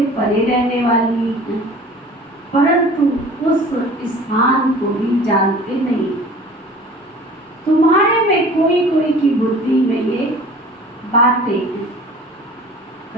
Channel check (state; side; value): normal; both; correlation 0.45